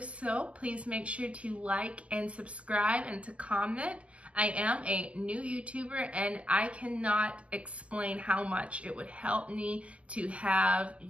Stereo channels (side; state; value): left; late; 0.062 ms